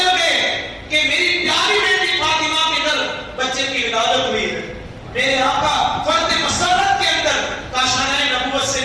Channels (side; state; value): both; identical; correlation 1.00